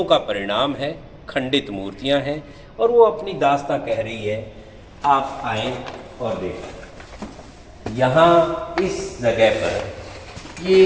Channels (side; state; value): both; identical; correlation 1.00